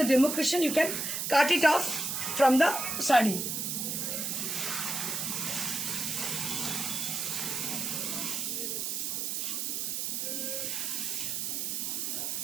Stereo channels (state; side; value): noise; right; hiss, 1 dB below the sound